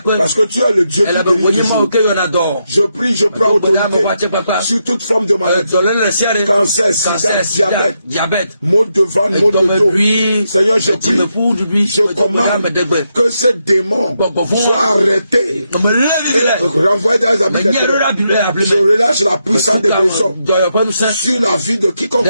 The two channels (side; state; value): both; inverted; correlation -0.82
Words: parce que tu es le Dieu qui guérit. Je prie, je prends autorité sur toute forme de maladie. Cancer, sida, diabète, maux de ventre, maux de dos. Seigneur, je prie, je commande que ces démons soient arrêtés et renvoyés dans les habits de je relâche la puissance de guérison sur la vie de quiconque.